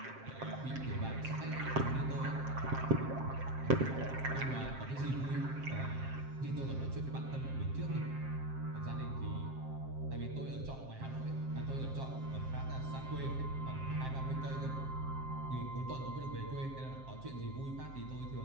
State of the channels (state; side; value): late; left; 7.6 ms